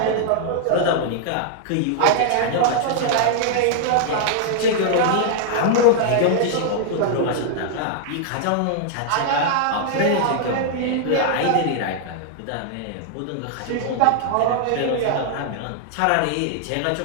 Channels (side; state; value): both; different; correlation -0.01